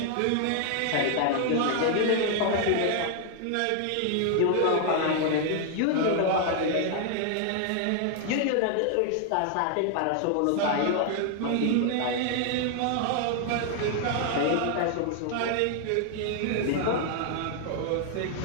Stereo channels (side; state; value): both; different; correlation 0.00